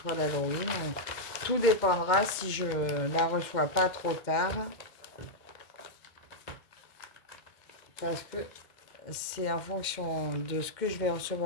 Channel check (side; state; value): right; late; 2.2 ms